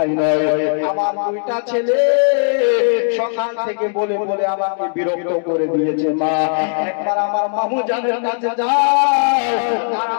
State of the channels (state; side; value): silent; right; digital silence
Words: নয়, আমার দুইটা ছেলে সকাল থেকে বলে বলে আমাকে বিরক্ত করে দিয়েছে। মা একবার আমার মামু জানের কাছে যাও আর